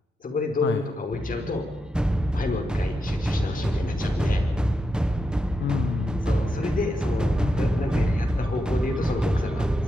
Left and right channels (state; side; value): normal; both; correlation 0.86